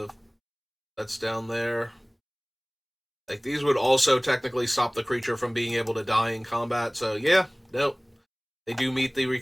that's down there. Like, these would also technically stop the creature from being able to die in combat. So yeah, no, they do meet the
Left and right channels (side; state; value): both; identical; correlation 1.00